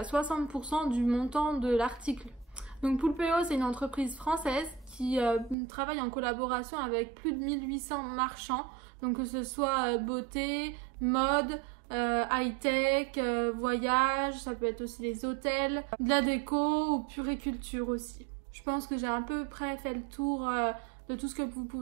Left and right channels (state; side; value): drops out; left; at 5.6 s